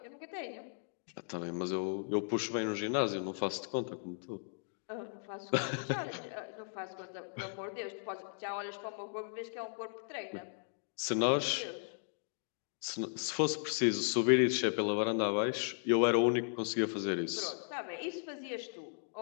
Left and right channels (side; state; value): right; silent; digital silence